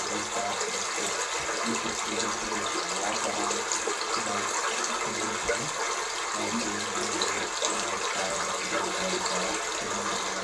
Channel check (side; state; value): both; identical; correlation 1.00